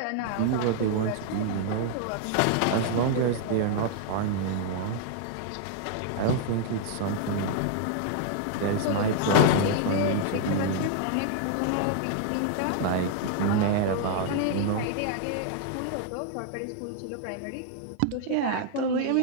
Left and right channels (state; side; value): different; both; correlation 0.00